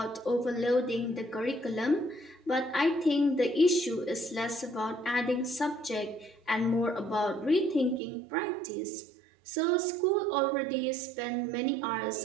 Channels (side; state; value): left; drops out; at 8.0 s